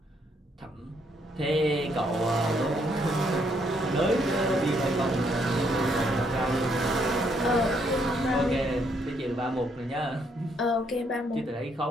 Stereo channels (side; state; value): both; normal; correlation 0.72